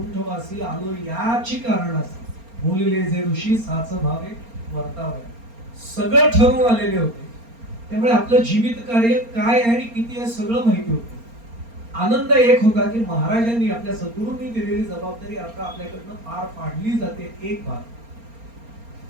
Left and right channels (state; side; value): late; left; 4.3 ms